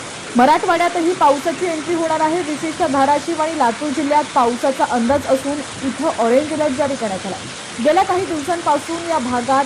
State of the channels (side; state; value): both; identical; correlation 1.00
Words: मराठवाड्यातही पावसाची एंट्री होणार आहे। विशेषतः धाराशिव आणि लातूर जिल्ह्यात पावसाचा अंदाज असून इथं ऑरेंज अलर्ट जारी करण्यात आला। गेल्या काही दिवसांपासून या भागात